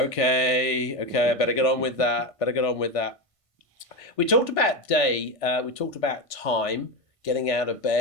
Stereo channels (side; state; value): right; late; 1.5 ms